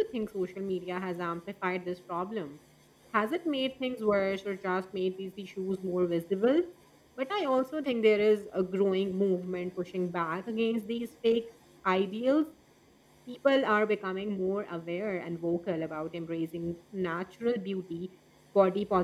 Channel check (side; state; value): both; identical; correlation 1.00